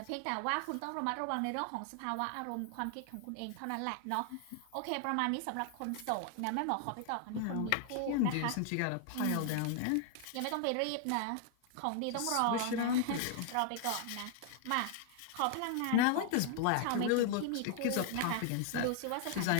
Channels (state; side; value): different; both; correlation 0.00